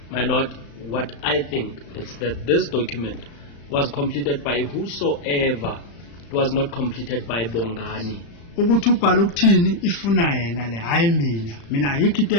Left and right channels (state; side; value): late; right; 35 ms